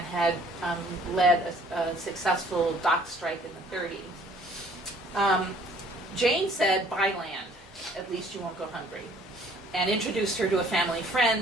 had led a successful dock strike in the 30s. Jane said, buy land, at least you won't go hungry, and introduced her to a family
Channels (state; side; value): normal; both; correlation 0.57